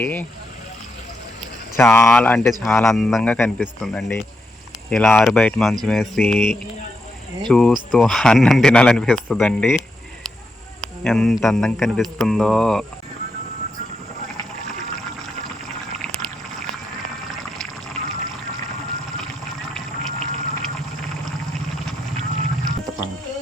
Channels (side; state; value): both; normal; correlation 0.83